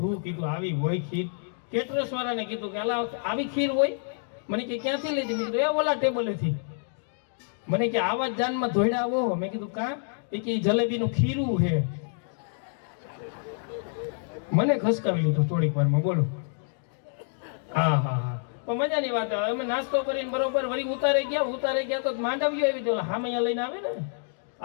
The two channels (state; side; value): silent; right; digital silence